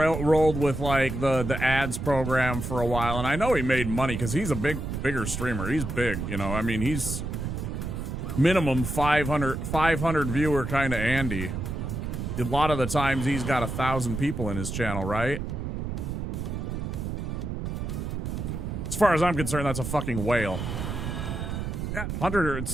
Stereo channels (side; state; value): right; noise; rumble, 4 dB below the sound